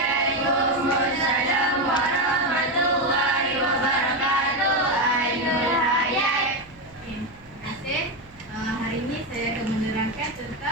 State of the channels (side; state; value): right; noise; hum, 26 dB below the sound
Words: warahmatullahi wabarakatuh. Ainul Hayat. Terima kasih. Hari ini saya akan menerangkan